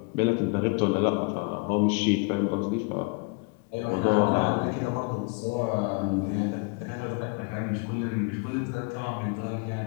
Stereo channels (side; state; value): right; quieter; 30.5 dB